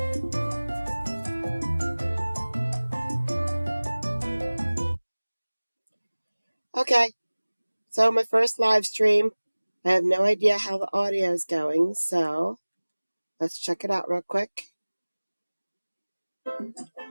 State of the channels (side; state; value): both; inverted; correlation -1.00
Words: Okay, so my first live stream. I have no idea how the audio is going, so let's check it out real quick.